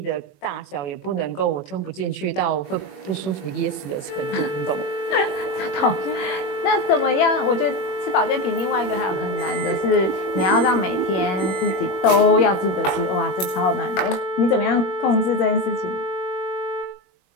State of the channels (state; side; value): late; right; 21 ms